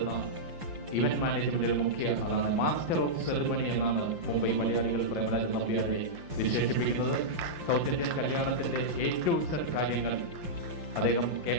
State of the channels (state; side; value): late; left; 5.8 ms